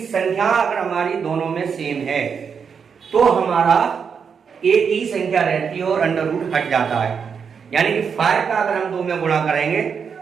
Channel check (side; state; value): left; quieter; 6.4 dB